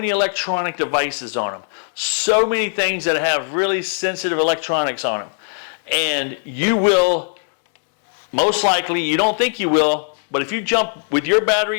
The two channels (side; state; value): right; silent; digital silence